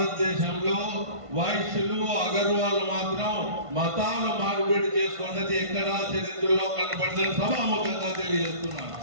వైశ్యులు, అగర్వాళ్ళు మాత్రం మతాలు మార్పిడి చేసుకున్నది ఎక్కడా చరిత్రలో కనపడదని సభాముఖంగా తెలియజేస్తున్నాను.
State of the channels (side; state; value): left; late; 1.5 ms